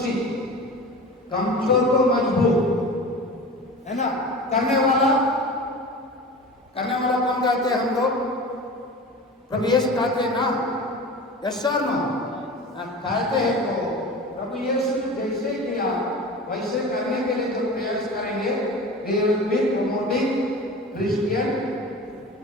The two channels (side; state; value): both; normal; correlation 0.34